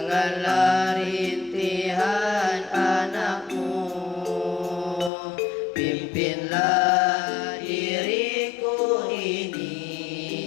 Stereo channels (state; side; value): drops out; right; at 5.1 s